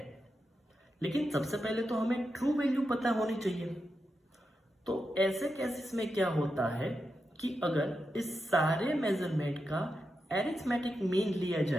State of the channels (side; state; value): both; normal; correlation 0.87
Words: लेकिन सबसे पहले तो हमें ट्रू वैल्यू पता होनी चाहिए। तो ऐसे केसेस में क्या होता है कि अगर इस सारे मेजरमेंट का एरिथमेटिक मीन लिया